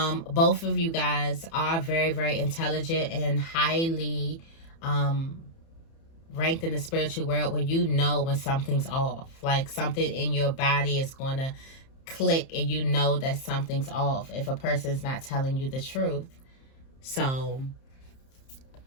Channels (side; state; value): right; late; 30 ms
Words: of you guys are very, very intelligent and highly ranked in the spiritual world, where you know when something's off. Like something in your body is going to click and you know that something's off if a person's not telling you the truth. So